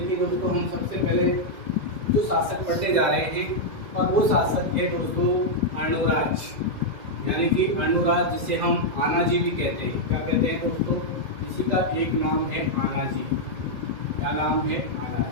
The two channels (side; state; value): left; late; 2.1 ms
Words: दोस्तों, हम सबसे पहले जो शासक पढ़ने जा रहे हैं, और वो शासक है दोस्तों अर्णोराज, यानी कि अर्णोराज, जिसे हम आनाजी भी कहते हैं। क्या कहते हैं दोस्तों? इसी का एक नाम है आनाजी। क्या नाम है?